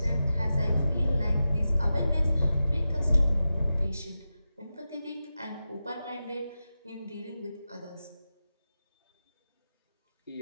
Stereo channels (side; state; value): both; inverted; correlation -0.92